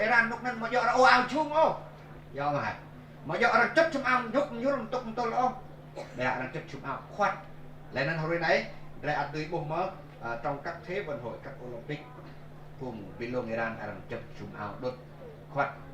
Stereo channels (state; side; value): identical; both; correlation 1.00